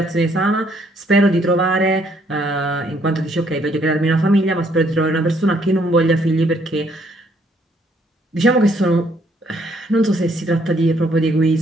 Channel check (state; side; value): normal; both; correlation 0.68